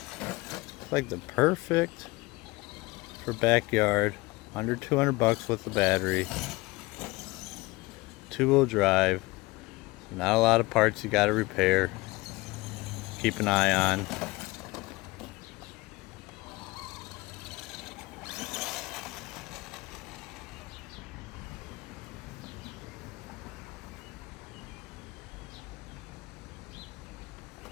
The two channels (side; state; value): right; quieter; 22.4 dB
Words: It's like the perfect for backyard. Under 200 bucks with the battery. 2-wheel drive. Not a lot of parts you gotta repair. Keep an eye on.